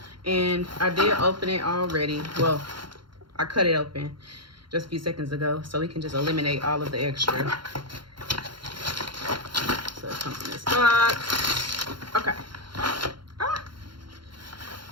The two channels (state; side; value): late; left; 0.73 ms